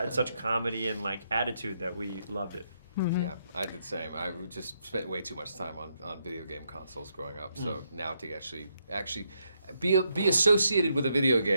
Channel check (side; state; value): both; inverted; correlation -0.78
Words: such comedy and like attitude that we loved it. Mm-hmm. Yeah, I did the same. I just spent way too much time on video game consoles growing up. So now to actually be associated with a video